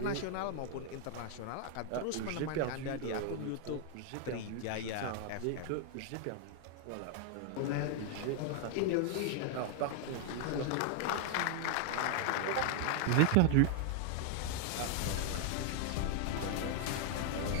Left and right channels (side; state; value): both; different; correlation 0.00